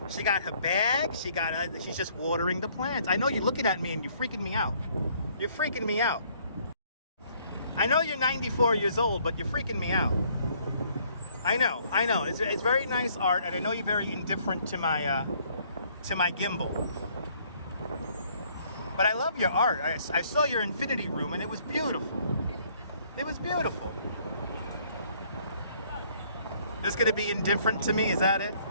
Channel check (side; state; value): both; inverted; correlation -0.63